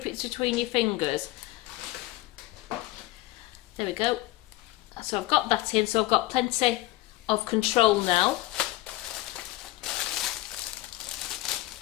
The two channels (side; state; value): right; quieter; 18.0 dB